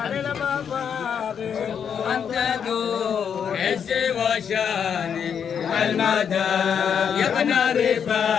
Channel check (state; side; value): quieter; right; 7.6 dB